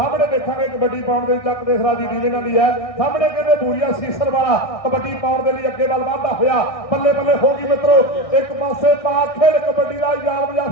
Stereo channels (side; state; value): right; late; 1.6 ms